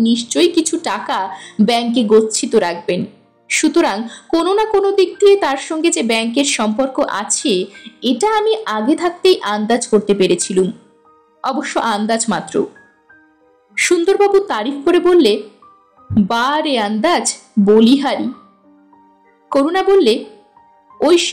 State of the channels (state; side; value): identical; both; correlation 1.00